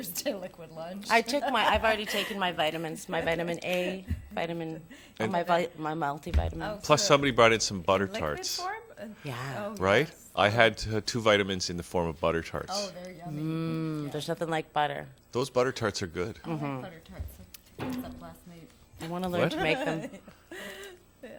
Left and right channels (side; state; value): both; identical; correlation 1.00